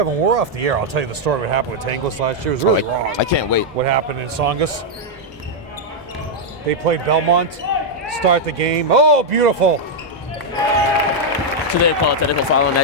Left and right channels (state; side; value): normal; both; correlation -0.03